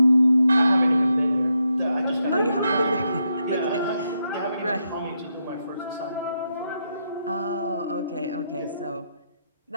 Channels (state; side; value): inverted; both; correlation -0.82